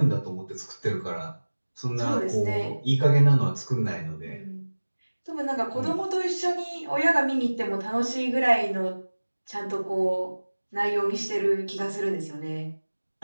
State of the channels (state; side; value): inverted; both; correlation -1.00